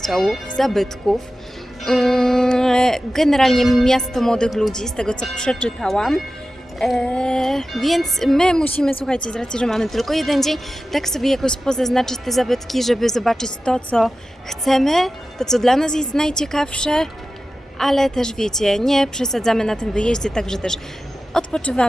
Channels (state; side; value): normal; both; correlation 0.93